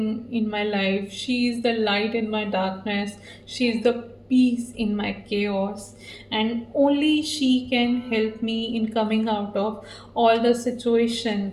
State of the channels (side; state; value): both; identical; correlation 1.00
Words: in my life. She is the light in my darkness. She is the peace in my chaos. And only she can help me in coming out of all the